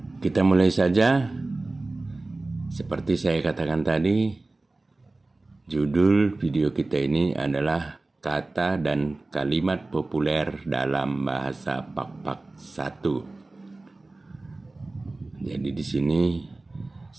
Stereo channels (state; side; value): quieter; left; 3.1 dB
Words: Kita mulai saja. Seperti saya katakan tadi, judul video kita ini adalah Kata dan Kalimat Populer dalam Bahasa Pak-Pak 1. Jadi di sini